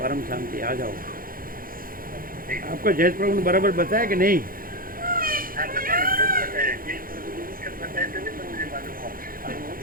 परम शांति। आ जाओ। आपको जयेश प्रभु ने बराबर बताया कि नहीं?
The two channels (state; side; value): late; left; 0.41 ms